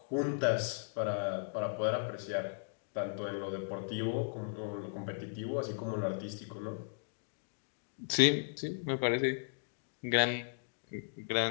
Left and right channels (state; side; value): silent; right; digital silence